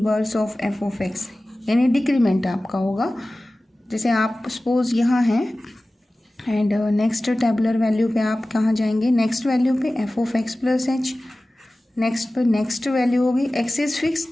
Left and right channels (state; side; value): normal; both; correlation 0.97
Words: of f of x, यानी डिक्रीमेंट आपका होगा. जैसे आप सपोज यहाँ हैं एंड नेक्स्ट टेबुलर वैल्यू पे आप कहाँ जाएंगे, नेक्स्ट वैल्यू पे F of x plus H. Next पर नेक्स्ट वैल्यू होगी, एक्स इज फिक्स